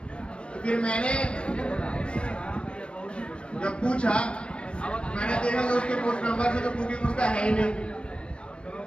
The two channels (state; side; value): late; right; 0.058 ms